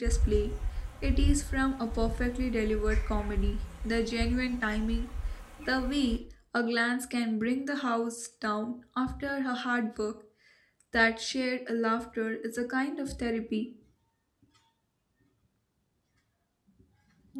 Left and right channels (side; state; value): both; identical; correlation 1.00